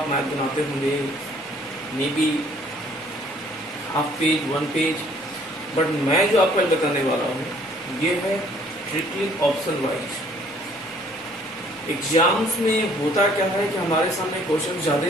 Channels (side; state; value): both; normal; correlation 0.59